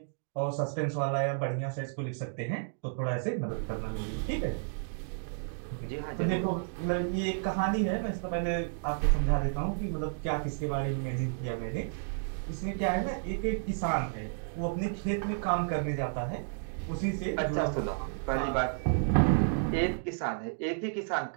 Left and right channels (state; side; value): silent; left; digital silence